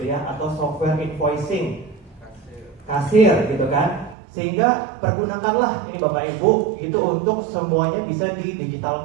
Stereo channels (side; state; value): left; drops out; at 4.2 s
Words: ya, atau software invoicing, kasir gitu kan. Sehingga pergunakanlah ini Bapak Ibu itu untuk semuanya bisa